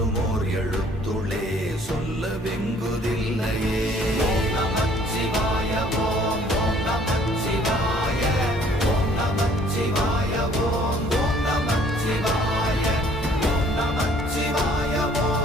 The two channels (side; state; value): both; normal; correlation 0.58